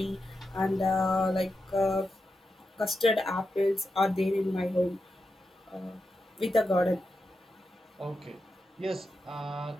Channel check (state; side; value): normal; both; correlation 0.88